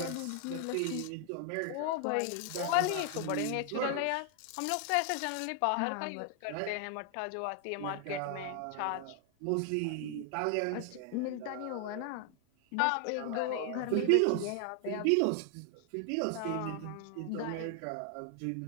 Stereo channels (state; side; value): different; both; correlation 0.00